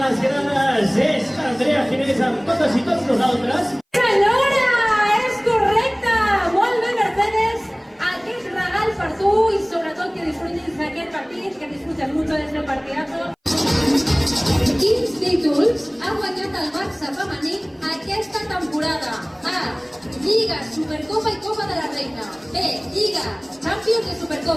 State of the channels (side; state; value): both; identical; correlation 1.00